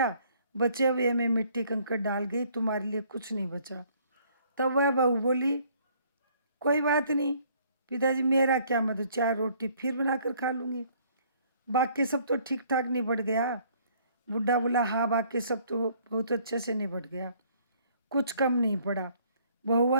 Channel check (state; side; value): inverted; both; correlation -0.61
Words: बचे हुए में मिट्टी कंकड़ डाल गई, तुम्हारे लिए कुछ नहीं बचा। तब वह बहू बोली, कोई बात नहीं पिताजी, मेरा क्या मतलब, 4 रोटी फिर बनाकर खा लूँगी, बाकी सब तो ठीक ठाक निबट गया। बुढ़ा बोला, हाँ बाकी सब तो बहुत अच्छे से निबट गया, कुछ कम नहीं पड़ा। बहू